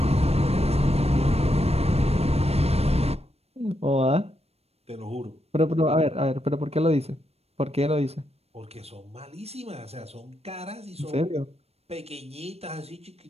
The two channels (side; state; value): left; late; 0.30 ms